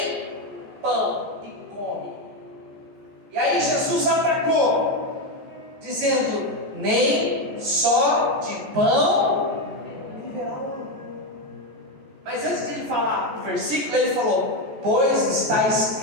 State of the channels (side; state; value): left; late; 14 ms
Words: pão e come. E aí Jesus atacou, dizendo: nem só de pão viverá o homem. Mas antes de ele falar o versículo, ele falou: pois está